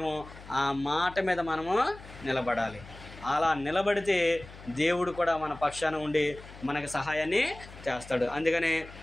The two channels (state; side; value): noise; left; hum, 17 dB below the sound